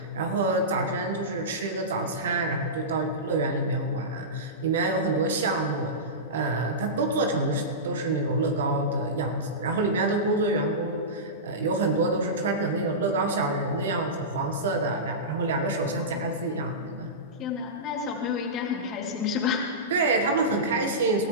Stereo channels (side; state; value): both; normal; correlation -0.18